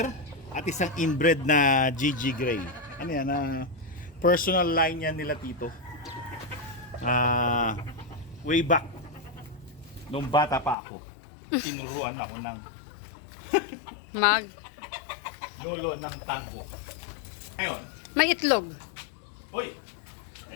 at isang inbred na GG Gray. Ano yan? Personal line yan nila Tito. Way back. Nung bata pa ako. Tinuruan ako ng lolo ng tango. Ngayon, May itlog. uy!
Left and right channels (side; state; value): right; drops out; at 10.8 s